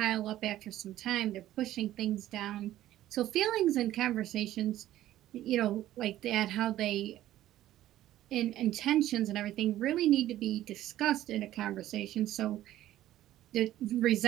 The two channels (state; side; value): quieter; left; 13.8 dB